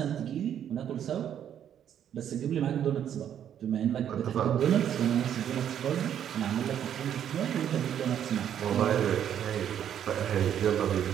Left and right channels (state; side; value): quieter; left; 9.7 dB